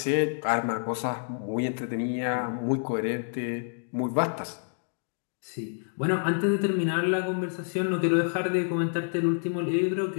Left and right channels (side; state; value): right; silent; digital silence